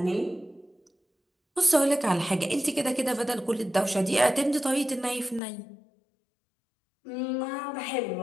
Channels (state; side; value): drops out; right; at 5.4 s